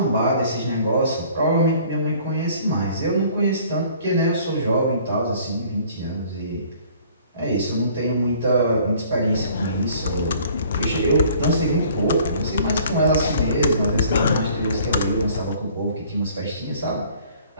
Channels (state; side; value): inverted; both; correlation -0.55